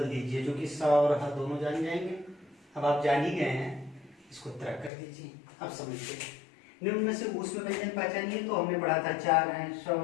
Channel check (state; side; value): drops out; right; at 4.9 s